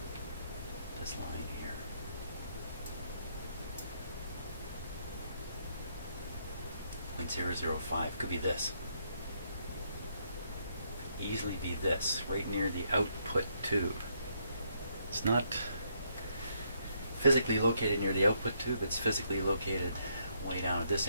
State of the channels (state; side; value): inverted; both; correlation -0.74